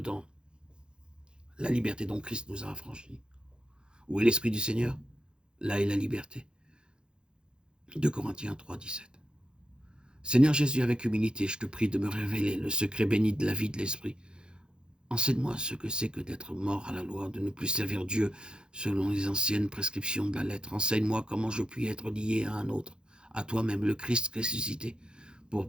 la liberté dont Christ nous a affranchis. Où est l'Esprit du Seigneur? Là est la liberté. 2 Corinthiens 3, 17. Seigneur Jésus, avec humilité, je te prie de me révéler le secret béni de la vie de l'Esprit. Enseigne-moi ce que c'est que d'être mort à la loi, de ne plus servir Dieu selon les anciennes prescriptions de la lettre. Enseigne-moi comment je puis être lié à un autre, à toi-même, le Christ ressuscité,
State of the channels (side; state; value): left; late; 0.049 ms